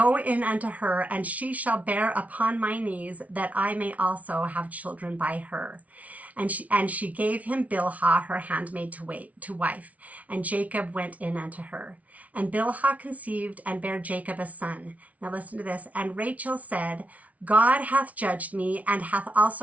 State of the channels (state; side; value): late; left; 0.069 ms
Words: in unto her, and she shall bear upon my knees, that I may also have children by her. And she gave him Bilhah, her handmaid, to wife. And Jacob went in unto her. And Bilhah conceived and bare Jacob a son. Now listen to this. And Rachel said, God hath judged me, and hath